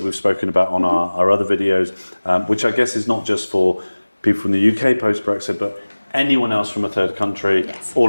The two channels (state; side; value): inverted; both; correlation -1.00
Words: spoken about on our other videos, which I guess is not just for people from the UK post-Brexit, but anyone else from a third country